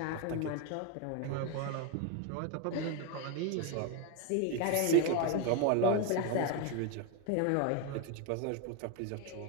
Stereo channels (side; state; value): both; different; correlation 0.02